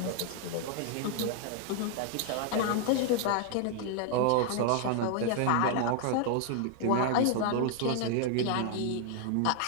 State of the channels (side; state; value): both; different; correlation 0.00